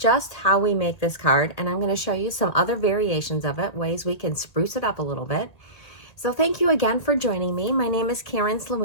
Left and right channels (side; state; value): right; late; 2.0 ms